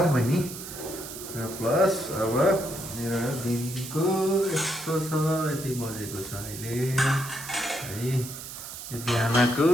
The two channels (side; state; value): right; noise; hiss, 10 dB below the sound